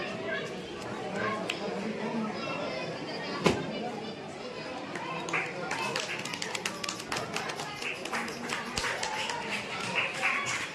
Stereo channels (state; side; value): identical; both; correlation 1.00